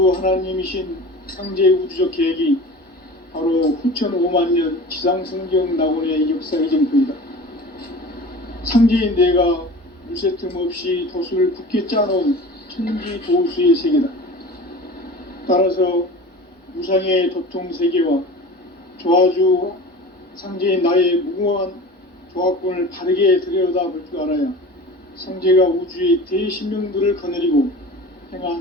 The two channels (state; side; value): normal; both; correlation 0.37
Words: 하나님이신 상제 우주적 계획이 바로 후천 5만년 지상성경 낙원의 역사의 정토이다. 상제인 내가 물새 틈 없이 도수를 굳게 짜놓은 천지 도수의 세계다. 따라서 무상의 도통 세계와 조화주 상제인 나의 무궁한 조화권을 바르게 들여다볼 줄 알아야 상제가 우주의 대신명들을 거느리고